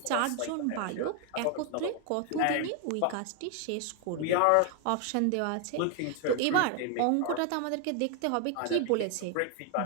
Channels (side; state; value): both; different; correlation 0.00